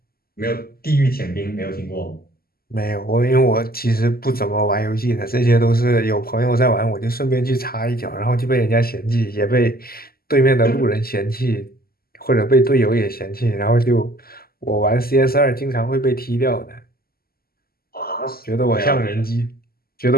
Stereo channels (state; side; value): late; right; 0.44 ms